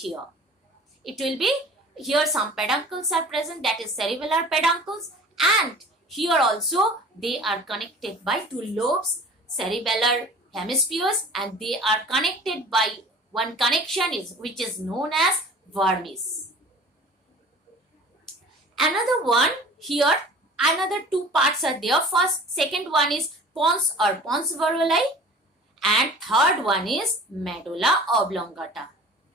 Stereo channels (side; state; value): both; normal; correlation 0.44